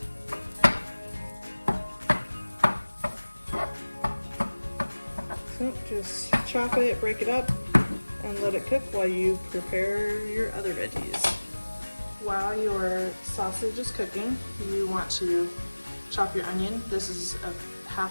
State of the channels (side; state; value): both; inverted; correlation -1.00